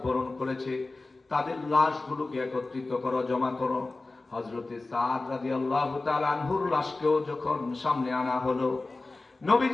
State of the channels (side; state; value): right; quieter; 3.3 dB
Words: বরণ করেছে, তাদের লাশগুলোকে একত্রিত করো, জমা করো। হযরতে সাদ রাদিয়াল্লাহু তাআলা আনহুর লাশকেও যখন সামনে আনা হলো,